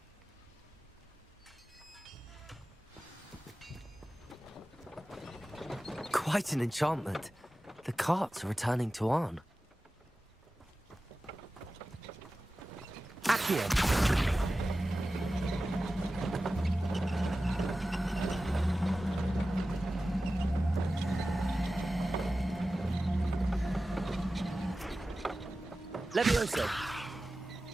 Quite an enchantment. The carts are returning to Arn. Accio. Levioso.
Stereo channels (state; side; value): normal; both; correlation 0.95